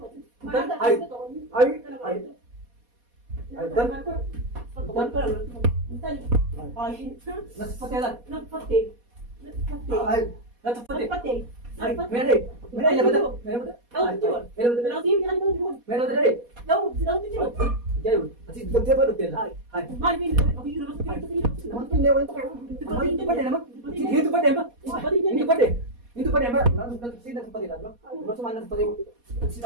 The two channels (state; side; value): late; left; 4.2 ms